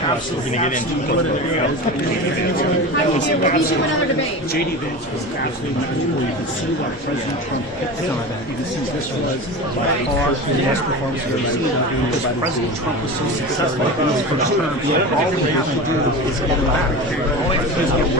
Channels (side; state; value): both; normal; correlation 0.29